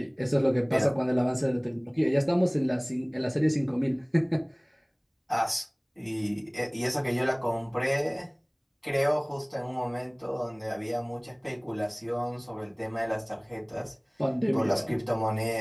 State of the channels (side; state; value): both; identical; correlation 1.00